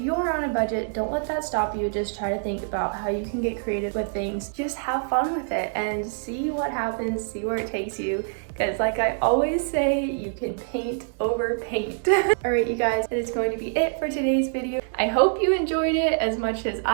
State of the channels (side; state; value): left; silent; digital silence